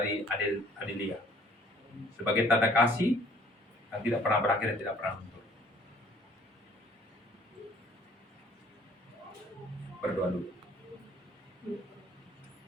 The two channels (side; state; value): both; normal; correlation 0.57